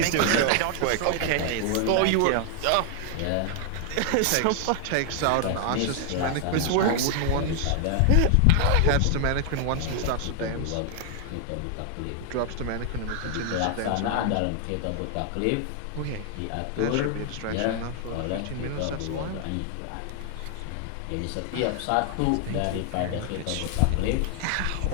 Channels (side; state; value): both; different; correlation 0.00